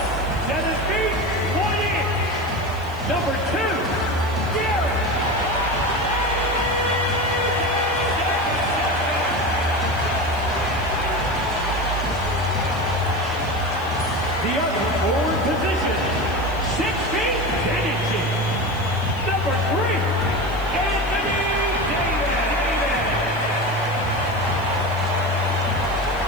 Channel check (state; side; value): noise; right; hiss, 23 dB below the sound